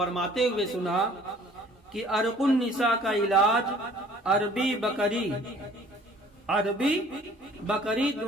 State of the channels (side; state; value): both; normal; correlation 0.54